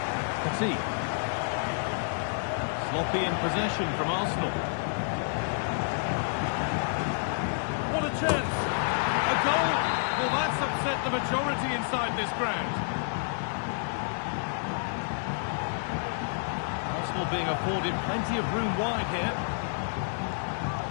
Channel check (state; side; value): silent; right; digital silence